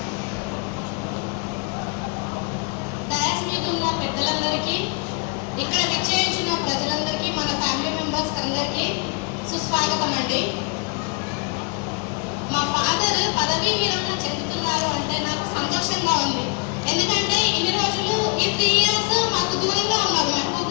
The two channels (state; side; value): quieter; right; 34.3 dB